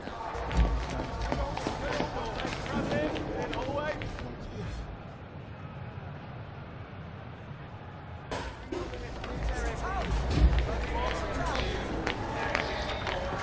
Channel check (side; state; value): both; identical; correlation 1.00